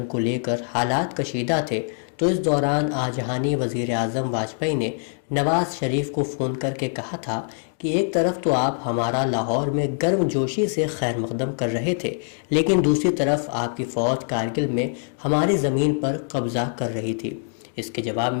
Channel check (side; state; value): right; silent; 63 dB below the other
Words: को लेकर हालात कशीदा थे, तो इस दौरान आजहानी वजीर आजम वाजपेयी ने नवाज शरीफ को फोन करके कहा था कि एक तरफ तो आप हमारा लाहौर में गर्मजोशी से खैर मकदम कर रहे थे, लेकिन दूसरी तरफ आपकी फौज कारगिल में हमारी जमीन पर कब्जा कर रही थी। इसके जवाब